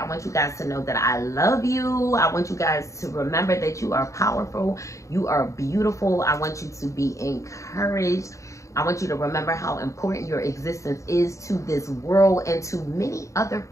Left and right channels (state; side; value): late; right; 0.15 ms